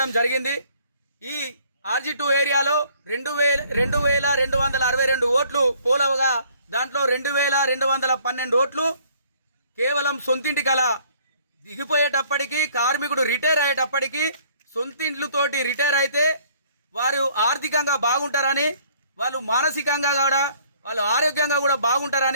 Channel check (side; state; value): both; inverted; correlation -0.59